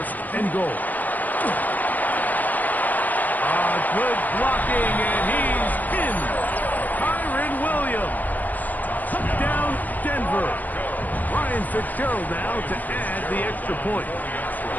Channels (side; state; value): right; late; 0.083 ms